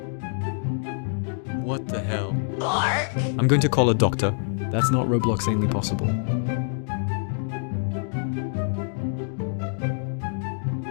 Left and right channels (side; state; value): right; silent; digital silence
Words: What the hell? I'm going to call a doctor. That's not Robloxanely possible.